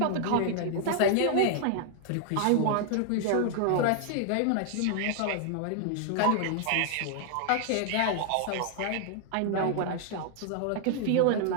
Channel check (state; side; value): different; both; correlation 0.00